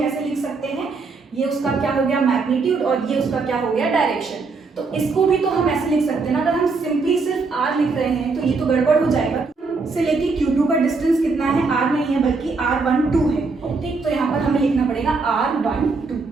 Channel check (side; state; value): left; quieter; 4.2 dB